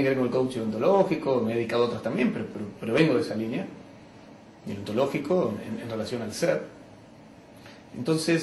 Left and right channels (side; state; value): both; identical; correlation 1.00